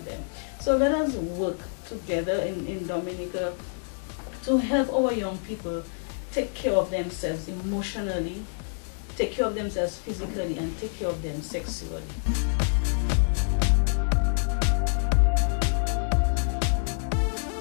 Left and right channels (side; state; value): right; silent; digital silence